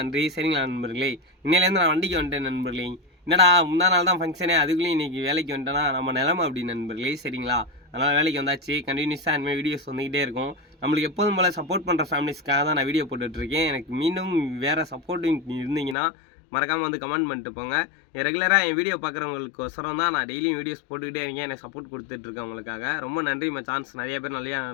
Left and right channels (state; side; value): drops out; right; at 16.0 s